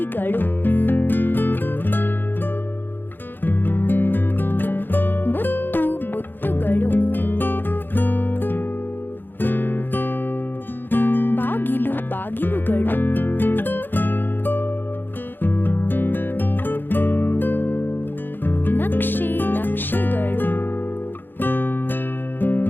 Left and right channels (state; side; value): late; right; 0.096 ms